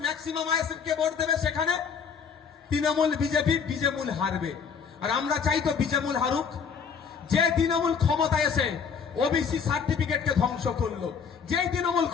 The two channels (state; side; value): quieter; right; 6.5 dB